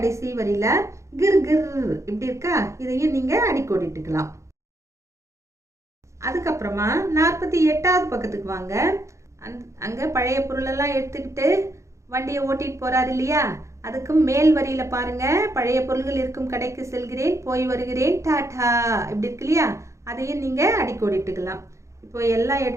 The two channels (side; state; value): left; late; 0.14 ms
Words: வரியில கிர் கிர் இப்படி இருக்கா, இதையும் நீங்க அடிக்கோடிட்டுக்கலாம். அதுக்கப்புறமா 48வது பக்கத்துக்கு வாங்க. அங்க பழைய பொருள் எல்லாம் எடுத்துக்கிட்டு வண்டியை ஓட்டிட்டு போறாரு இல்லையா, அதுக்கு மேல் வரியில பாருங்க, பழைய பொருள்கள் இருக்கும் கடைக்கு செல்கிறேன், போய் வருகிறேன், டாடா இப்படி இருக்கு இல்லையா, அதையும் நீங்க அடிக்கோடிட்டுக்கலாம். இப்போ எல்லா